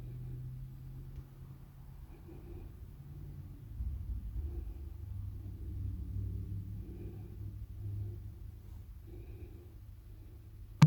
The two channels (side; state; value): both; identical; correlation 1.00